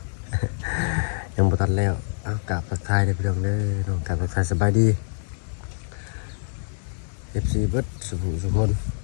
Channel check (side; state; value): right; silent; digital silence